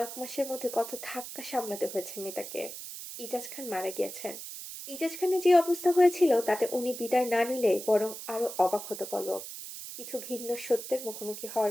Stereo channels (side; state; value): right; noise; hiss, 10 dB below the sound